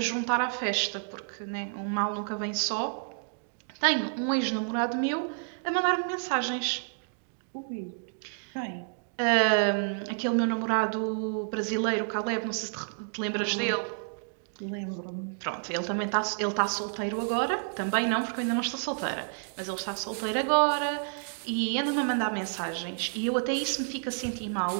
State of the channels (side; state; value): left; silent; digital silence